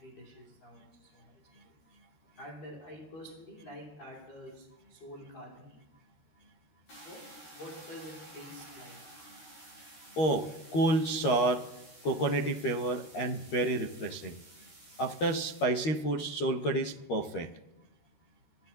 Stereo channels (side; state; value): right; late; 13 ms